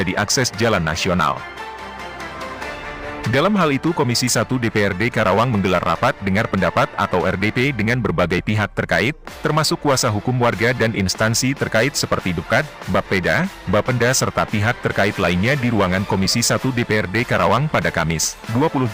akses jalan nasional. Dalam hal itu Komisi 1 DPRD Karawang menggelar rapat dengar pendapat atau RDP dengan berbagai pihak terkait, termasuk kuasa hukum warga dan instansi terkait seperti Dukcad, Bapeda, Bapenda serta pihak terkait lainnya di ruangan Komisi 1 DPRD Karawang pada Kamis, 20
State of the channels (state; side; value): identical; both; correlation 1.00